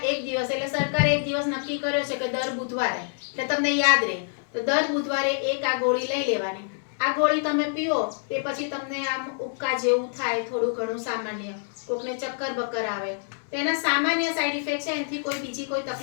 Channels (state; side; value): silent; right; digital silence